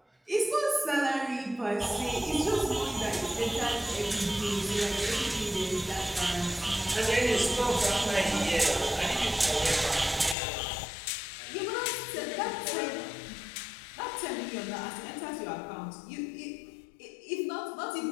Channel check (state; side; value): drops out; right; at 10.4 s